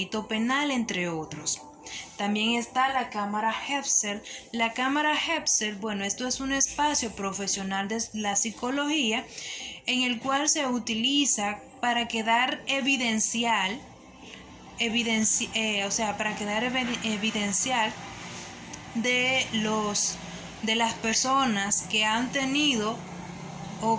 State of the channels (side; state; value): both; identical; correlation 1.00